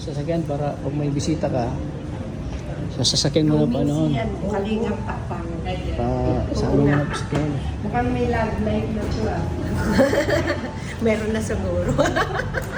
para pag may bisita ka, sa sasakyan mo na pa noon. Kalingap takpang. Sa amin na sasakyan. Mukhang may love life na to Meron na siguro.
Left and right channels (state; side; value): identical; both; correlation 1.00